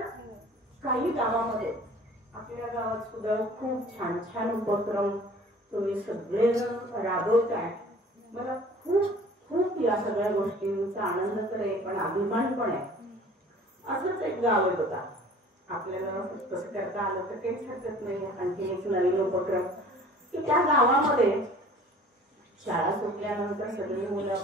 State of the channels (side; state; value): both; normal; correlation 0.48